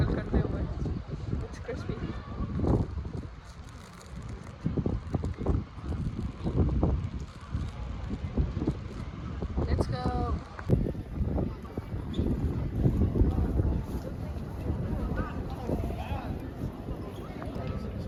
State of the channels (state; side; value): identical; both; correlation 1.00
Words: करते हुए, it's crispy। Let's go।